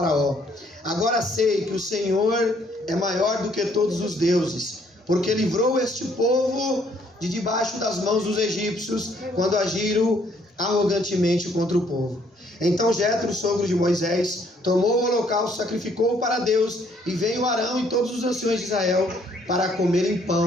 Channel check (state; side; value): normal; both; correlation 0.65